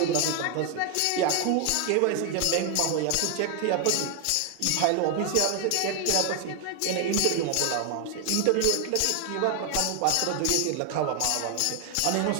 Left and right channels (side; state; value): both; different; correlation 0.00